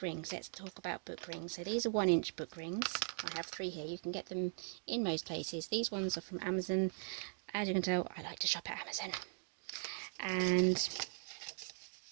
rings, let's talk about book rings. So these are 1-inch book rings. I have 3 here. You can get them in most places. These ones are from Amazon. As you can tell, I like to shop at Amazon. And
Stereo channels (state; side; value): silent; left; digital silence